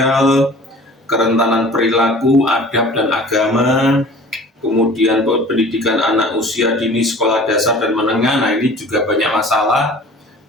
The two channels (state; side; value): normal; both; correlation 0.45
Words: perilaku, adab dan agama, kemudian pendidikan anak usia dini, sekolah dasar dan menengah. Nah, ini juga banyak masalah.